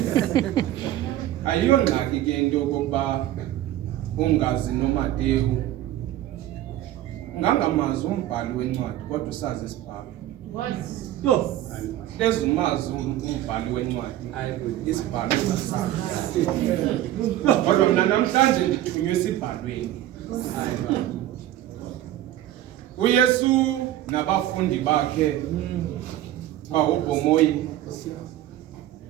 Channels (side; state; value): left; quieter; 13.4 dB